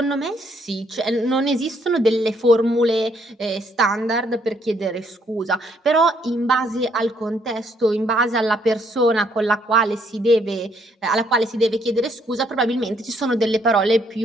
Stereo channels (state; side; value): normal; both; correlation 0.69